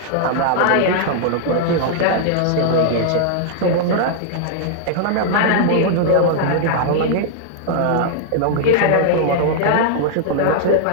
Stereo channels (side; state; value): both; different; correlation -0.01